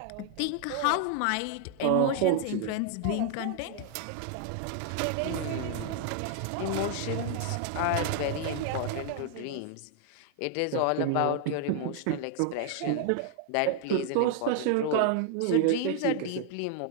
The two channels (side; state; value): both; different; correlation 0.00